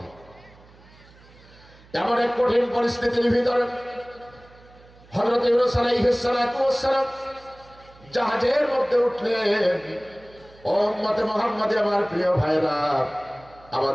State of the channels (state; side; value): noise; right; hum, 25 dB below the sound